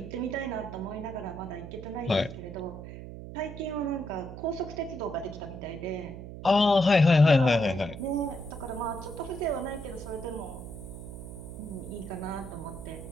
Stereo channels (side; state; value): right; noise; hum, 11 dB below the sound